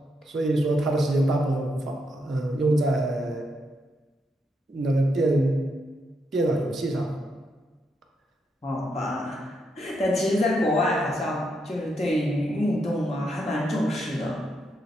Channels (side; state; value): both; normal; correlation 0.80